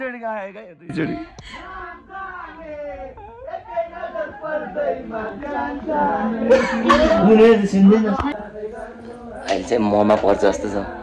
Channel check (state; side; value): identical; both; correlation 1.00